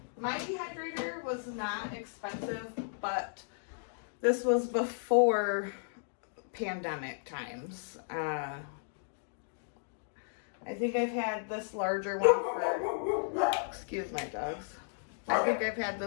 My dehydrator was not expensive, but this was before pandemic times. I think I've had this larger one for, excuse my dogs. I think I've had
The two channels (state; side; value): silent; right; digital silence